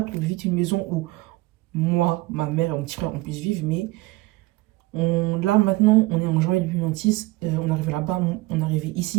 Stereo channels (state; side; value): quieter; left; 20.2 dB